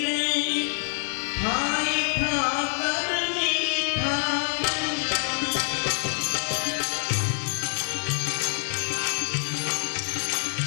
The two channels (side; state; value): right; silent; 61 dB below the other